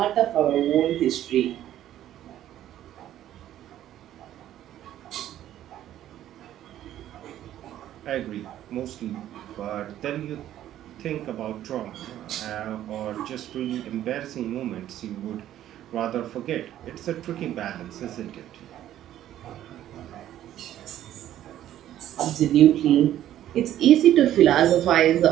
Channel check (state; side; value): quieter; left; 12.2 dB